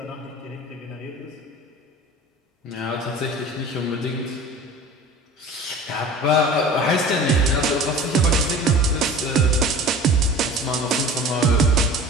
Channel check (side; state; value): both; normal; correlation 0.40